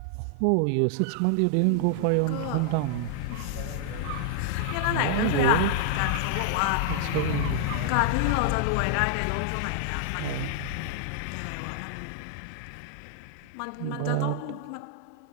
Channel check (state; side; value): different; both; correlation 0.00